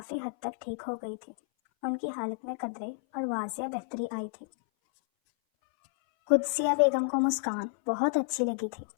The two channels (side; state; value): right; silent; 57 dB below the other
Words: حد تک ٹھیک ہو گئی تھی۔ ان کی حالت میں قدرے اور واضح بہتری آئی تھی۔ قدسیہ بیگم کو مسکان بہت اچھی لگی تھی